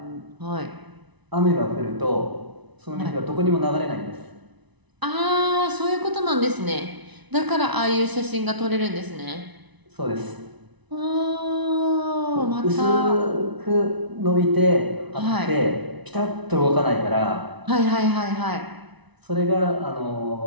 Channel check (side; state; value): left; late; 1.0 ms